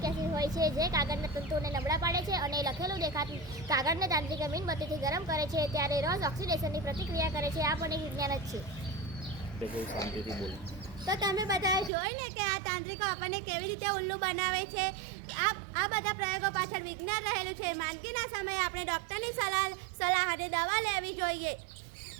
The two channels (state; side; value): drops out; left; at 11.9 s